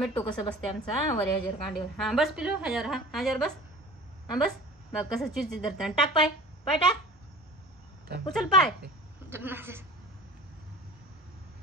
कसं बसते आमचा वर हजार कांडीवर. हा बस पिलो हजार. हा हजार बस. हा बस बघ कसं चिडचिड धरते. टाक पाय पाय टाक. उचल पाय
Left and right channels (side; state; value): both; normal; correlation 0.41